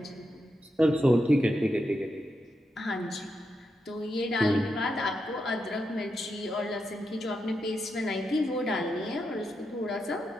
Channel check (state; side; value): normal; both; correlation 0.85